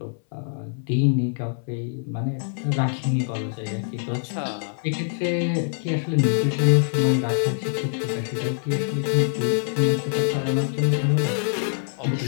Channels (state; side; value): silent; right; 62 dB below the other